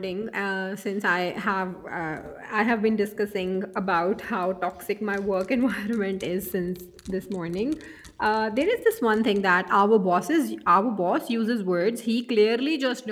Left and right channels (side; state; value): both; identical; correlation 1.00